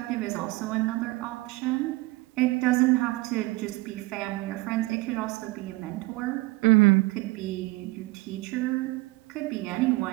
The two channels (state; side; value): quieter; left; 22.0 dB